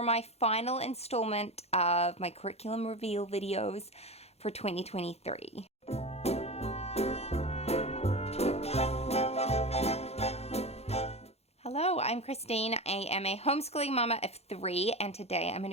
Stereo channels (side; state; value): right; late; 0.30 ms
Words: my final installment of my curriculum reveal videos for 2023. Hello, I'm Christine. I am a homeschooling mama of 3 and today I'm going